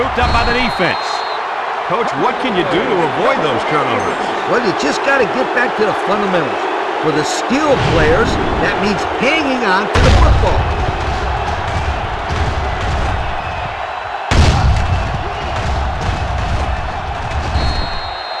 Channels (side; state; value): both; identical; correlation 1.00